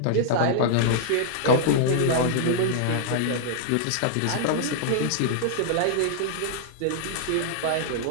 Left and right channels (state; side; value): different; both; correlation -0.01